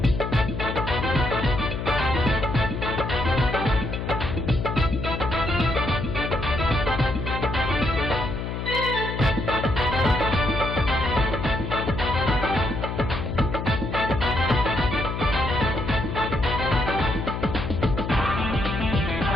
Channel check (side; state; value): left; noise; hum, 4 dB below the sound